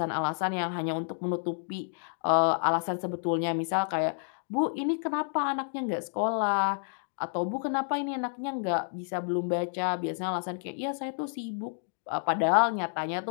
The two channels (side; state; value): right; silent; digital silence